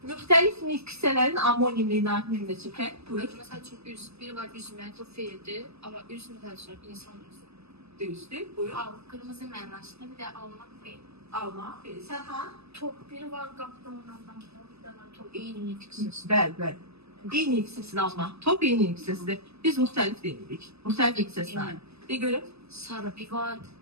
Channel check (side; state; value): left; late; 0.79 ms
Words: müxtəlif nüksələrin amonimli nümunə çəkək. Buyur. Mesela çünkü biri var üzmek, o fiildi ama üzmek karşılık insan yüzü. Düzdür. Buyur. Kırmızı mənasında bir de almak fiil. Alma. Sərxan. Top biri var qaplanandan bir de var top. İyinin itkisiz. Bəli. Eyni hissəsini alma. Top eyni hissəsidir. Biz müxtəlif deyirik. Müxtəlif hissəsini. Bir görüm. Sarı bir var.